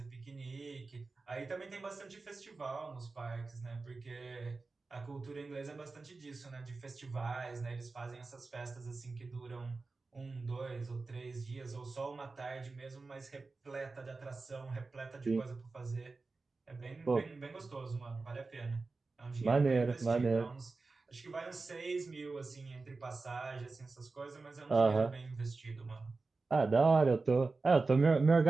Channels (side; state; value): left; quieter; 3.8 dB